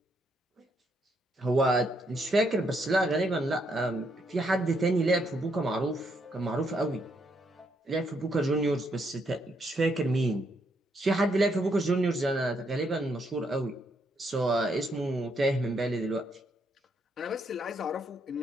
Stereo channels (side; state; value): both; normal; correlation 0.75